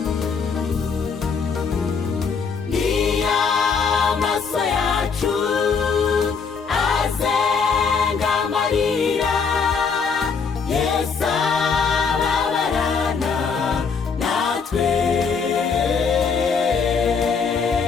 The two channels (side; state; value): right; quieter; 5.6 dB